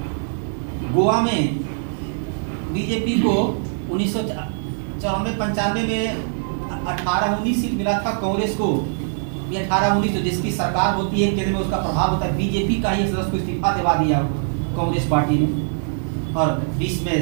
गोवा में बीजेपी को 1994-95 में 18-19 सीट मिला था, कांग्रेस को ये 18-19 जिसकी सरकार होती है केंद्र में, उसका प्रभाव होता है। बीजेपी का ही सदस्य को इस्तीफा दिलवा दिया कांग्रेस पार्टी ने, और 20 में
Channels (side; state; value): left; silent; digital silence